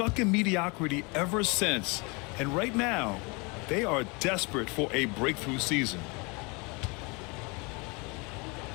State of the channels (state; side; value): quieter; right; 29.2 dB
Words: in mediocrity ever since. And right now, they are desperate for a breakthrough season.